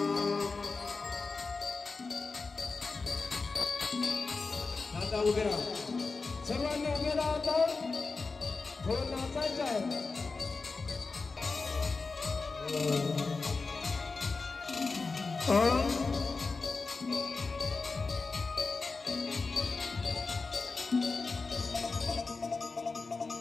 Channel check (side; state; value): right; quieter; 4.1 dB